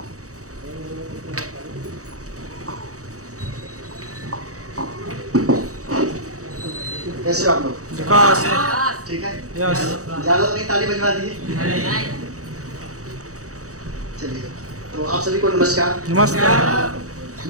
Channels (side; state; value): left; late; 0.65 ms